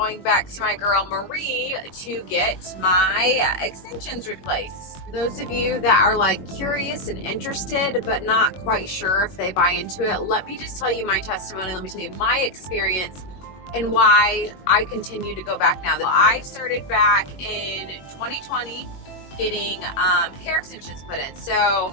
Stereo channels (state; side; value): late; right; 21 ms